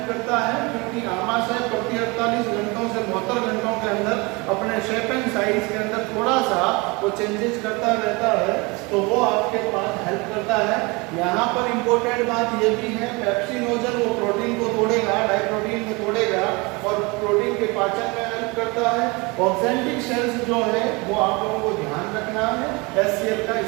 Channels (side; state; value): left; quieter; 26.6 dB